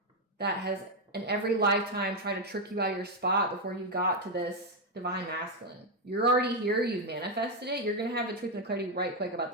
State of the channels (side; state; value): both; normal; correlation 0.04